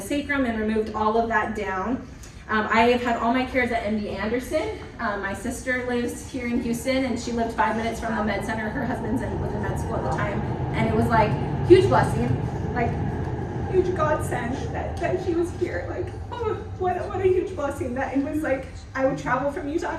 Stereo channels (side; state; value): both; identical; correlation 1.00